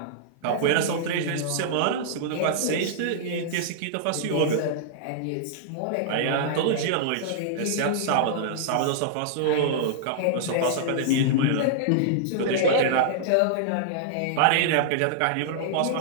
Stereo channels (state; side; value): different; both; correlation -0.01